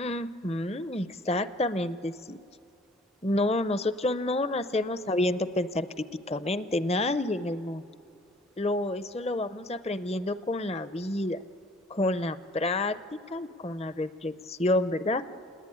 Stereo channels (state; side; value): normal; both; correlation 0.54